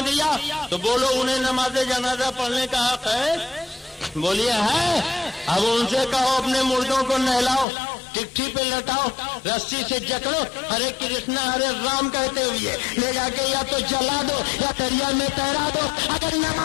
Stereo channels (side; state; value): right; drops out; at 7.7 s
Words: دیا تو بولو انہیں نماز جنازہ پڑھنے کا حق ہے؟ بولیے ہے. اب ان سے کہو اپنے مردوں کو نہلاؤ، ٹکٹھی پہ لٹاؤ، رسی سے جکڑو، ہرے کرشنا ہرے رام کہتے ہوئے لے جا کے یا تو جلا دو یا دریا میں تیرا دو. اگر